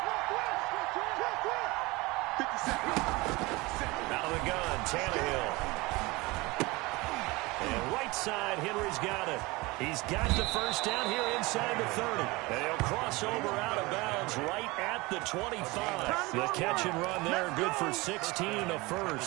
Out of the gun, Tannehill. And right side, Henry's got it. He's got the first down here inside the 30. And he'll cross over out of bounds right at the 25. The catch and run there, good for 16, a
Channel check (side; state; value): left; quieter; 23.1 dB